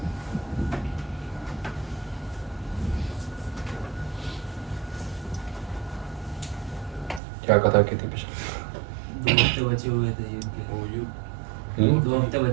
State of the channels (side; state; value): left; drops out; at 7.2 s